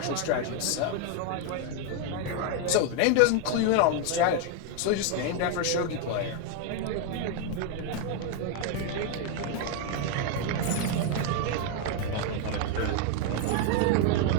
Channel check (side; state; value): both; different; correlation 0.01